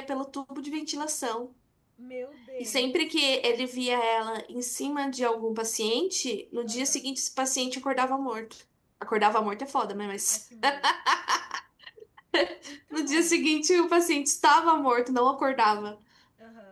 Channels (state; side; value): identical; both; correlation 1.00